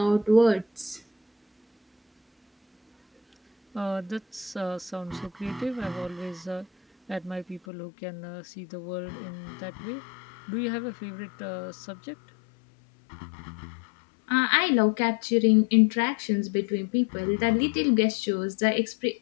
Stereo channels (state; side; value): drops out; right; at 7.6 s